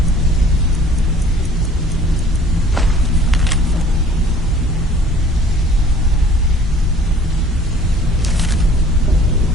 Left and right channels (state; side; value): normal; both; correlation 0.52